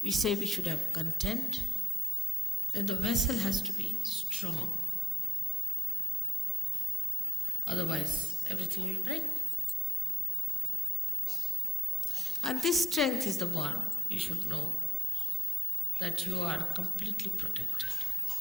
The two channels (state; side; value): normal; both; correlation 0.80